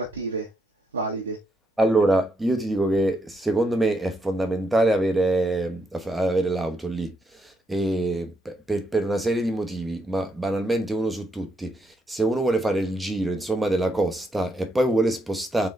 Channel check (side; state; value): both; normal; correlation 0.78